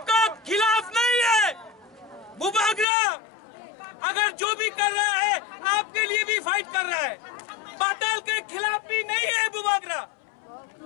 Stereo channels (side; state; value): right; drops out; at 2.9 s